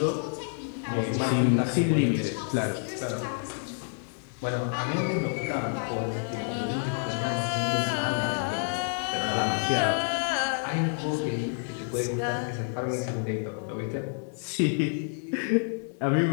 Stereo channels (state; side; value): silent; right; 59 dB below the other